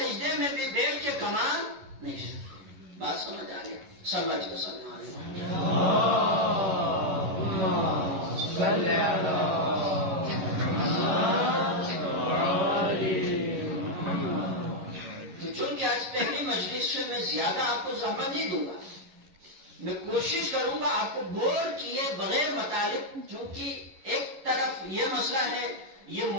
میں بھی بیٹھ کے کما نہیں سکتا. بات سمجھ آ گیا؟ صلی اللہ علیہ وسلم. تو چونکہ آج پہلی مجلس سے میں زیادہ آپ کو زحمت نہیں دوں گا، میں کوشش کروں گا آپ کو بور کیے بغیر مطالب، چونکہ ایک طرف یہ مسئلہ ہے، یہ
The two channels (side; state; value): left; late; 11 ms